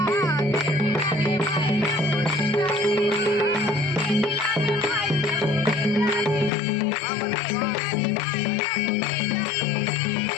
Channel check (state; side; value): drops out; right; at 6.5 s